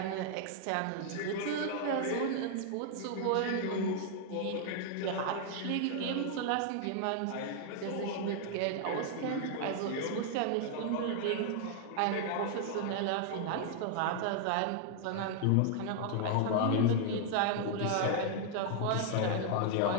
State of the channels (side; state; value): both; different; correlation 0.00